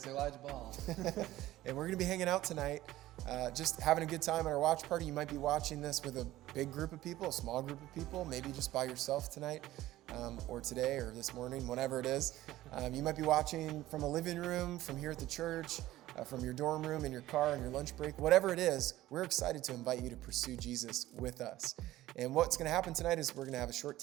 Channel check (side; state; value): left; quieter; 15.5 dB